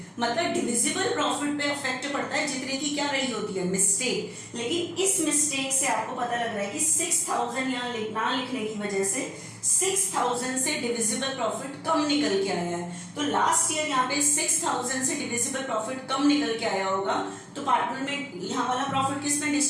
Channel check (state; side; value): identical; both; correlation 1.00